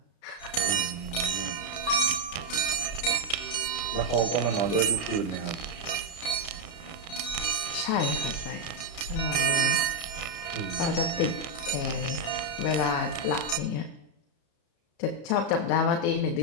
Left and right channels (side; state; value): right; late; 33 ms